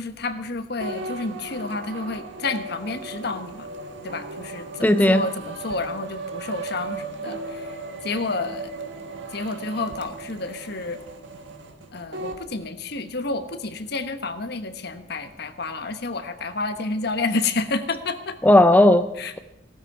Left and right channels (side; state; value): both; normal; correlation 0.55